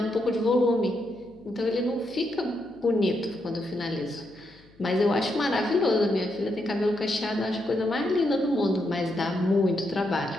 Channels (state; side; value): noise; left; hum, 28 dB below the sound